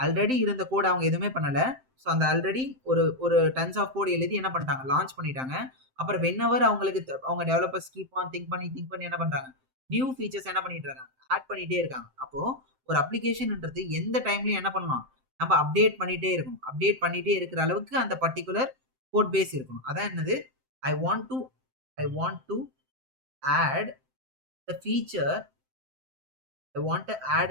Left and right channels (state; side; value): late; left; 7.7 ms